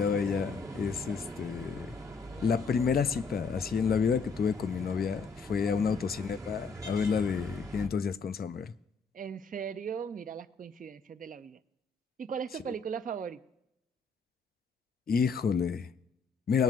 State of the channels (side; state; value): right; quieter; 4.7 dB